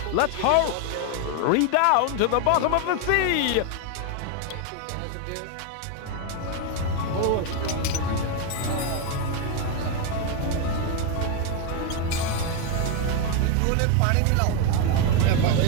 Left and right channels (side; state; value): both; different; correlation 0.01